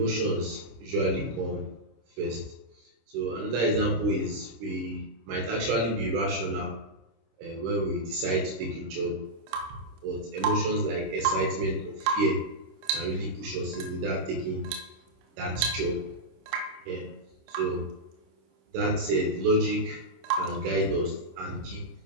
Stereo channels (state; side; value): late; left; 26 ms